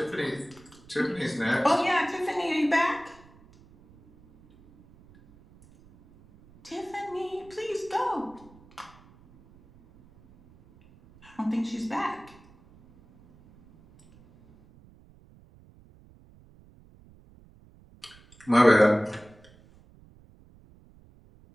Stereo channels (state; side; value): noise; right; rumble, 26 dB below the sound